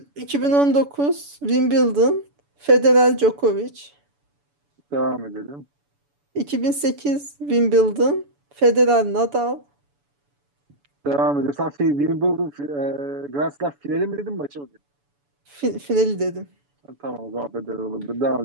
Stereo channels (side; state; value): left; late; 7.0 ms